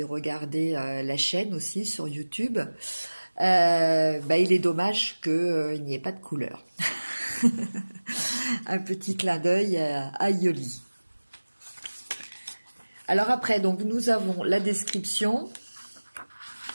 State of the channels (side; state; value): both; inverted; correlation -1.00